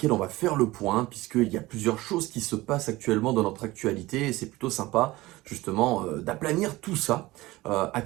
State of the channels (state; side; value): quieter; left; 19.2 dB